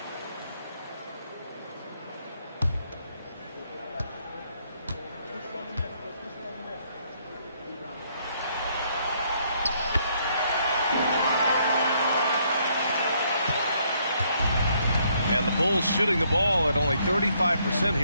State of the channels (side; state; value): both; inverted; correlation -0.70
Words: And the Bulls shooting the ball at only 35%